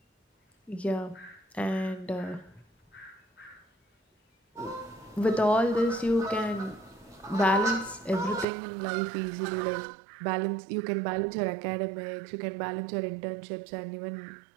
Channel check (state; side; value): drops out; left; at 8.5 s